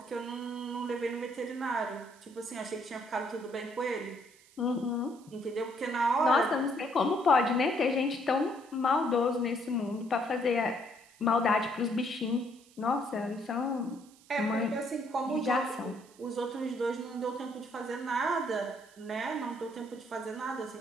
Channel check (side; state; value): right; noise; hiss, 26 dB below the sound